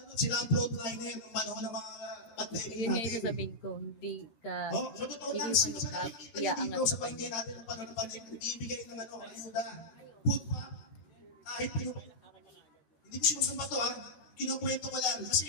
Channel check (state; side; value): late; right; 13 ms